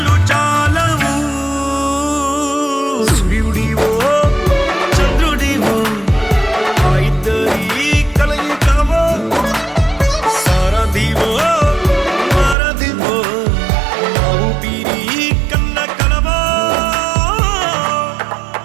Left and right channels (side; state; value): left; drops out; at 12.6 s